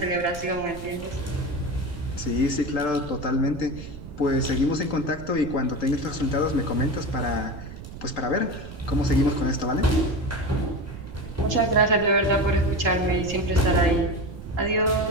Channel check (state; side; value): noise; right; rumble, 13 dB below the sound